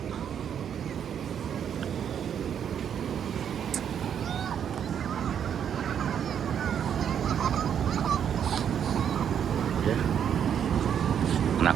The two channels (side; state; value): left; quieter; 8.6 dB